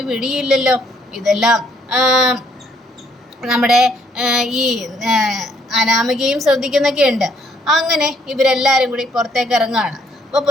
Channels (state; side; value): normal; both; correlation 0.67